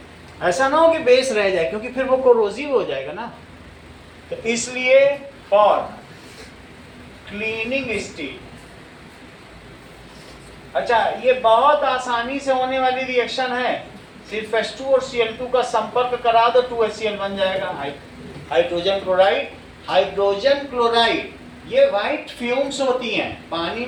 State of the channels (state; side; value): identical; both; correlation 1.00